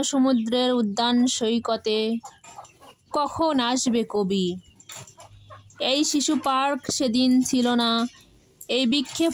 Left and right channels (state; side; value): identical; both; correlation 1.00